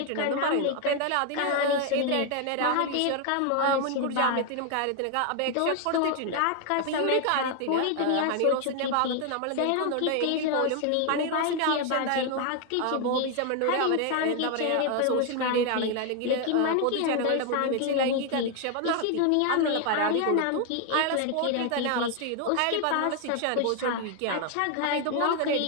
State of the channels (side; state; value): both; different; correlation 0.01